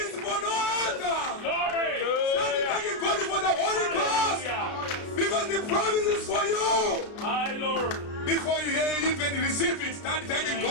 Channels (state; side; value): late; right; 33 ms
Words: for no other. Glory. Start thanking God for the Holy Ghost. Hallelujah. Because the promise is for you. My Lord. Before you even receive it, start thanking